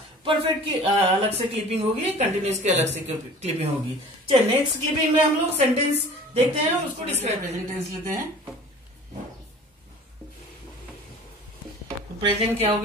परफेक्ट की अलग से क्लिपिंग होगी, कंटिन्यूस की अलग से क्लिपिंग होगी। चलिए नेक्स्ट क्लिपिंग में हम लोग सेंटेंस देखते हैं, उसको डिस्क्राइब प्रेजेंट टेंस लेते हैं। प्रेजेंट क्या हो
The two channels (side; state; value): both; normal; correlation 0.44